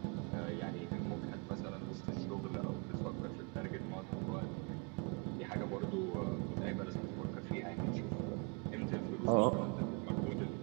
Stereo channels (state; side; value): quieter; left; 31.6 dB